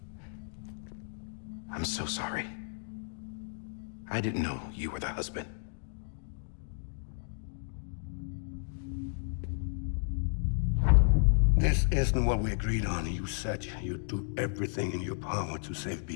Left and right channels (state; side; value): silent; right; digital silence